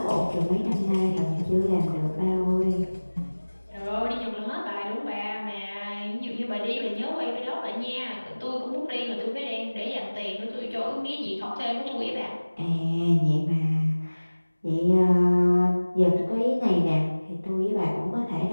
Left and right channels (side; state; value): both; inverted; correlation -1.00